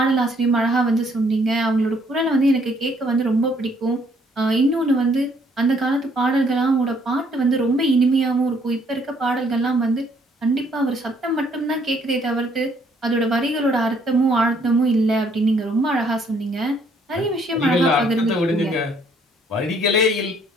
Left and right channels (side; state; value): both; normal; correlation 0.65